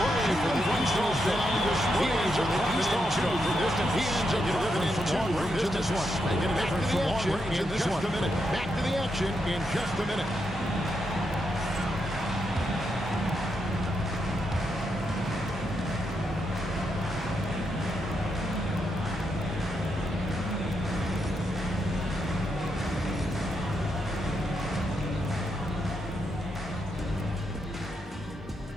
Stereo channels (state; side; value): normal; both; correlation 0.82